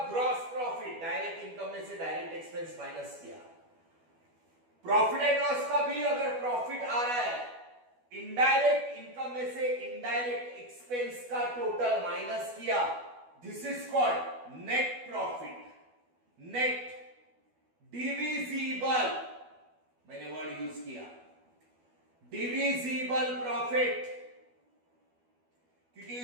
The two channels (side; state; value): left; late; 12 ms